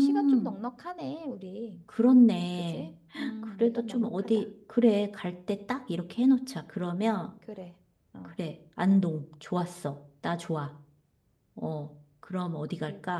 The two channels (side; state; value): both; identical; correlation 1.00